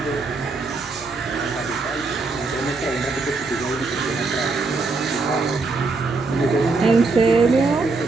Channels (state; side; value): quieter; left; 3.9 dB